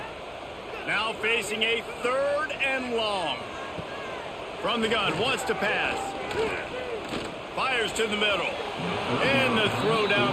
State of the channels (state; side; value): identical; both; correlation 1.00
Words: Now facing a 3rd and long. From the gun, wants to pass. Fires to the middle. And the throw